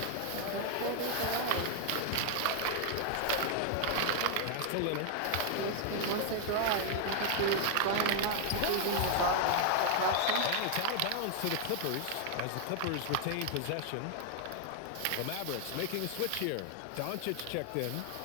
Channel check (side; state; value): both; different; correlation 0.00